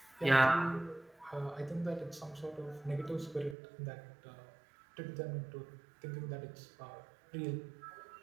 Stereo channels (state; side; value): drops out; left; at 3.6 s